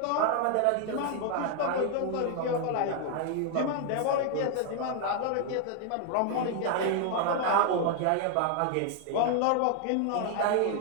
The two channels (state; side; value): different; both; correlation 0.00